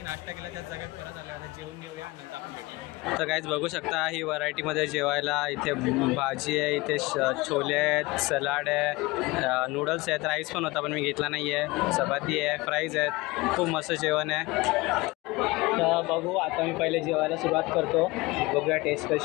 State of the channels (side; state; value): right; quieter; 22.3 dB